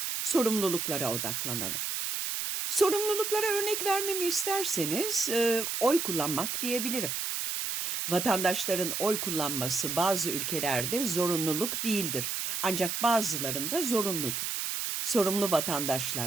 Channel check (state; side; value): noise; right; hiss, 2 dB below the sound